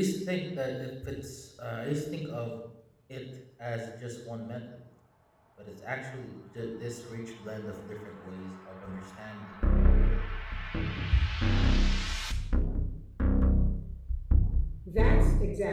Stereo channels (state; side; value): identical; both; correlation 1.00